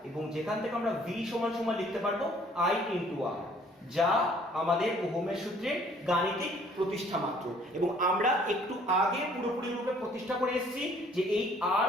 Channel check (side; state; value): both; normal; correlation 0.58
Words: এবং যেখান থেকে আমরা V সমান সমান লিখতে পারবো I × R, যা আমাদের ওহমের সূত্রের গাণিতিক প্রতিষ্ঠা মাত্র। এবং আমরা একটু আগে পুরোপুরি রূপে প্রতিষ্ঠা করে এসেছি যে এই R